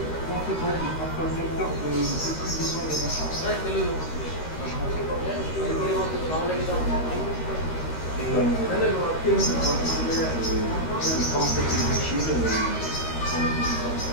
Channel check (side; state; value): right; late; 13 ms